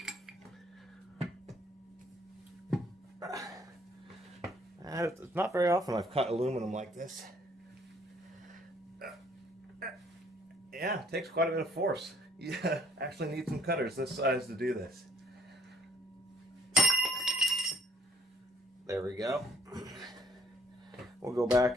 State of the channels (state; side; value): normal; both; correlation 0.65